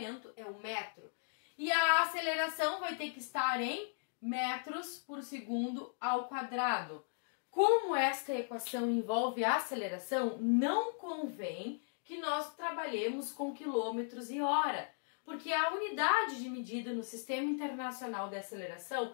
é o metro. E a aceleração vai ter que estar em metros por segundo ao quadrado. Como esta equação envolve a aceleração, não convém que nós trabalhemos com quilômetros e hora, porque a unidade de medida no Sistema Internacional de Aceleração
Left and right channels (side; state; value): right; silent; digital silence